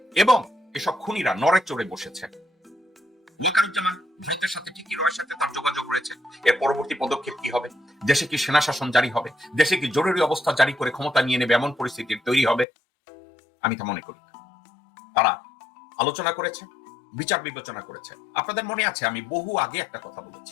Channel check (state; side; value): drops out; right; at 12.7 s